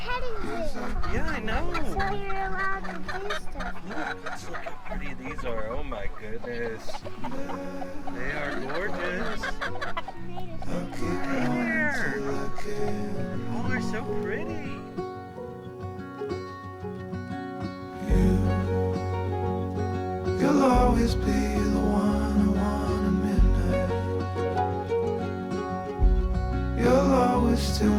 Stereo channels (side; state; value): both; identical; correlation 1.00